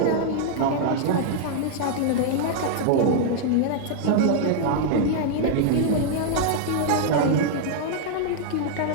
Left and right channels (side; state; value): both; different; correlation -0.01